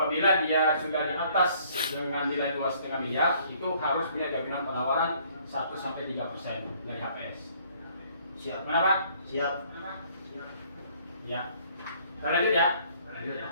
dia sudah di atas dengan nilai 2,5 miliar, itu harus punya jaminan penawaran 1-3% dari HPS. Siap. Kenapa? Siap. Ya. Kita lanjut ya.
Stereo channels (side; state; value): both; inverted; correlation -0.61